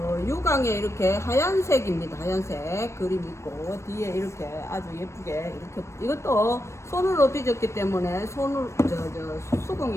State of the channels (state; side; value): late; right; 0.13 ms